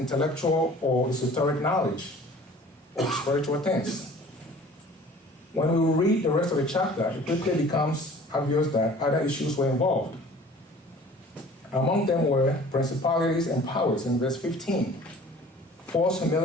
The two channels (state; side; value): normal; both; correlation 0.48